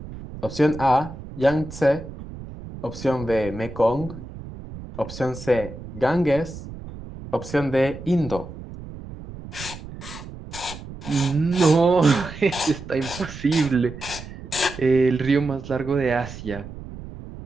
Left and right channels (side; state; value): right; noise; rumble, 13 dB below the sound